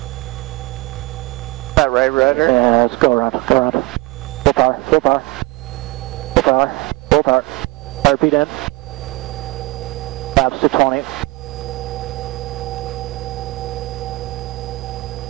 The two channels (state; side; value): quieter; left; 23.1 dB